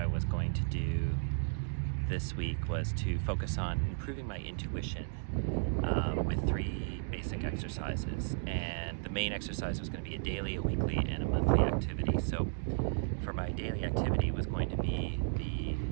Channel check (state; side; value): silent; left; digital silence